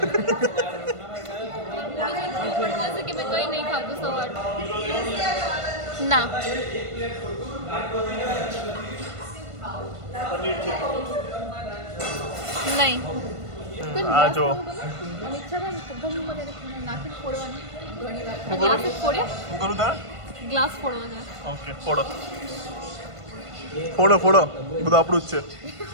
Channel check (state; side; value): late; left; 1.5 ms